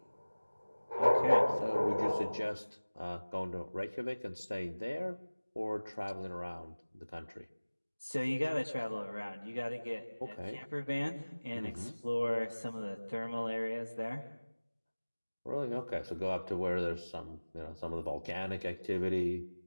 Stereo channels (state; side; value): inverted; both; correlation -1.00